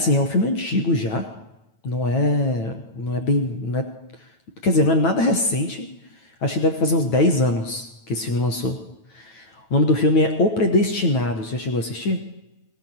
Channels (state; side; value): late; right; 9.1 ms